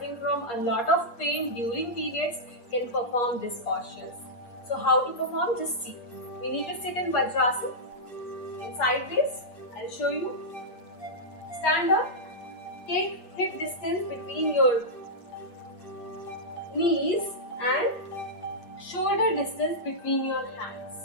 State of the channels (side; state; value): right; late; 8.4 ms